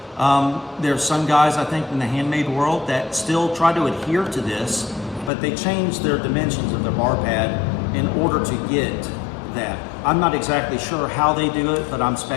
There's some guys, I think, in the handmade world that still try to adhere to this, but they change their dimensions of their bar pad in order to get that. I'm not exactly sure how they do it, but I'm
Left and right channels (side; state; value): right; drops out; at 5.3 s